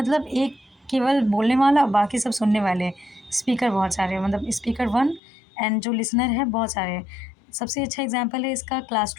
एक केवल बोलने वाला, बाकी सब सुनने वाले, स्पीकर बहुत सारे, मतलब स्पीकर वन एंड जो लिसनर है बहुत सारे। सबसे अच्छा एग्जांपल है इसका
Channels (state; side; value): drops out; right; at 5.2 s